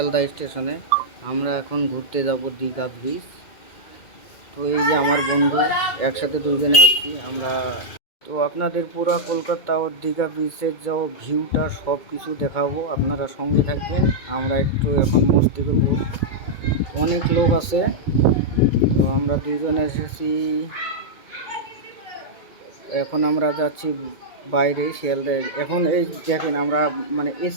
স্টেশনে। আমরা এখন ঘুরতে যাব দীঘা ব্রিজ। তো এই যে আমার বন্ধু, একসাথে দুজনে আসছি আমরা। তো আপনাদের পুরো কলকাতা ও দীঘা ব্রিজের যা ভিউটা সব কিছু দেখাবো, আপনারা সঙ্গে থাকবেন। আমরা একটু এখন মস্তি করবো, অনেক লোক আছে। তো আমরা দুজনে এসেছি, এখন আমরা যাচ্ছি বাইরে শিয়ালদায়। এখন এই দেখেন, আমরা মানে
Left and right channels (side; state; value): right; late; 2.2 ms